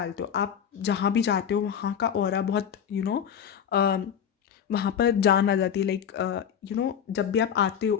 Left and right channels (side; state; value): right; quieter; 8.4 dB